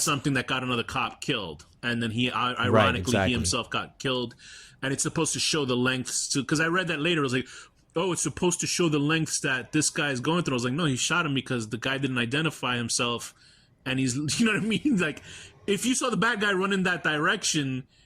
something that got another cop killed, and then he ironically he himself got killed, and it's supposed to show the lengths to. Because I read that later, it was like oh, it's supposed to show the lengths that this guy is going through. I was like, no, he shot him because the guy didn't identify himself, and he's, you know what I mean? Like, if you saw the bad guy run in that direction,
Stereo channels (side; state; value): both; identical; correlation 1.00